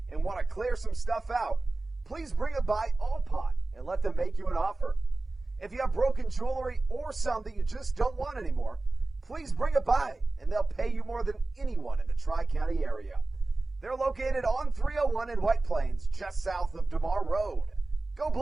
and want to clear some stuff out, please bring it by All Pawn and let them make you an offer. If you have broken jewelry or some that you just don't want anymore, please bring it by and they'll pay you more than anyone in the Tri-County area. They're located on 301 in White Plains, just south of DeMar Road. Go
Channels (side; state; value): left; quieter; 3.1 dB